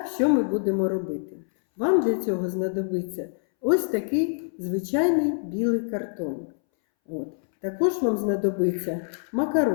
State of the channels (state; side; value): silent; right; 61 dB below the other